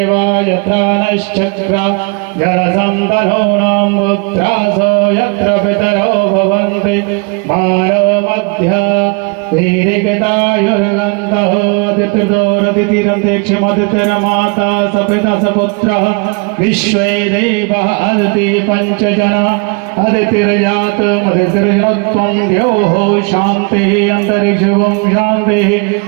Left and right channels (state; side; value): quieter; left; 31.8 dB